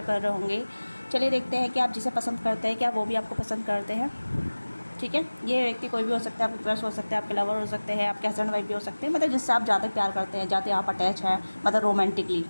रहे होंगे। चलिए देखते हैं कि आप जिसे पसंद करते हैं क्या वो भी आपको पसंद करते हैं। ठीक है, ये व्यक्ति कोई भी हो सकता है, आपके क्रश हो सकते हैं, आपके लवर हो सकते हैं, आपके हस्बैंड वाइफ भी हो सकते हैं, मतलब जिससे आप ज़्यादा प्यार करते हैं, ज़्यादा आप अटैच हैं, मतलब रोमांटिकली।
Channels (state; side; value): inverted; both; correlation -1.00